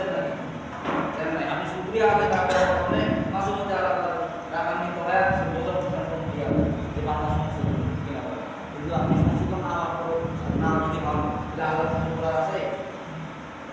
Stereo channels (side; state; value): both; identical; correlation 1.00